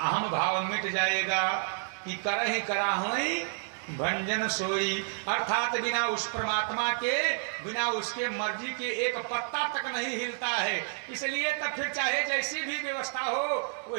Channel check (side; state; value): left; silent; 58 dB below the other